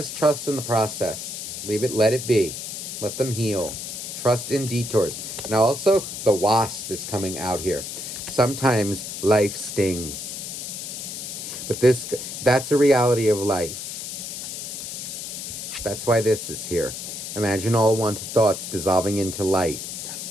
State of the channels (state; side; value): noise; left; hiss, 7 dB below the sound